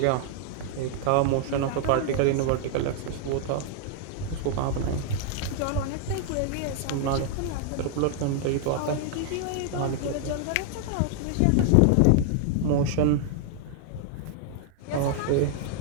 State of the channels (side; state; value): both; different; correlation 0.00